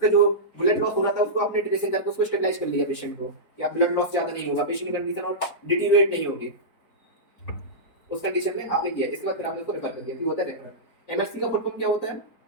जो ब्लड लॉस हो रहा था उसको आपने ड्रेसिंग करके उसको स्टेबलाइज कर लिया पेशेंट को कि आप ब्लड लॉस ज्यादा नहीं होगा, पेशेंट की कंडीशन और डिटीरियोरेट नहीं होगी, उस कंडीशन में आपने किया, इसके बाद फिर आपने उसको रेफर कर दिया, ये होता है रेफर। एमएससी का फुल फॉर्म क्या होता है,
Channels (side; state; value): right; late; 4.3 ms